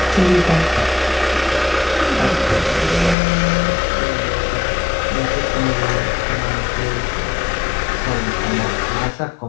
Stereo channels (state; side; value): drops out; right; at 3.2 s